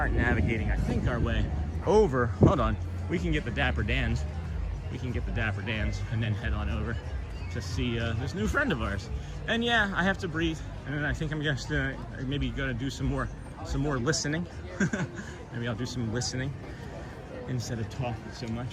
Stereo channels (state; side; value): identical; both; correlation 1.00